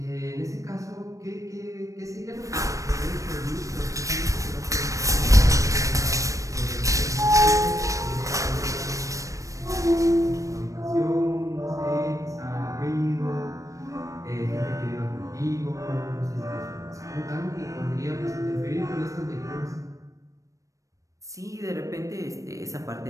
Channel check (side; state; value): left; late; 0.16 ms